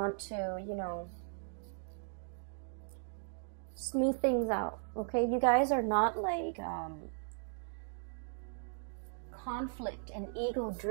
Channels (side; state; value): left; silent; digital silence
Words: to, you know, smooth things out, okay? You guys are not like conflict and